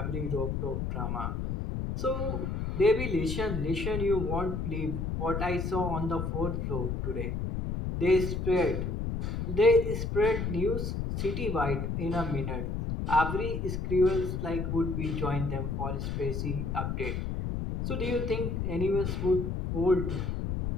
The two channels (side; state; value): left; noise; rumble, 2 dB below the sound